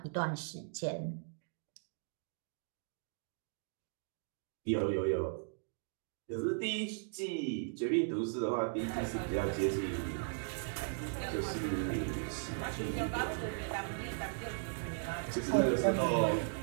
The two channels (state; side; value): silent; left; digital silence